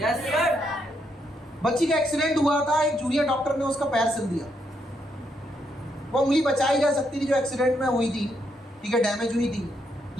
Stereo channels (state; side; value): normal; both; correlation 0.77